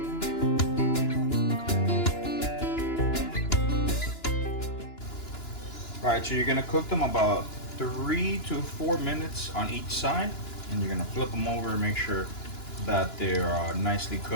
All right, so you're gonna cook them about 3 to 4 minutes on each side, and you're gonna flip them over and make sure that they're nicely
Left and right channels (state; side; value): late; right; 2.9 ms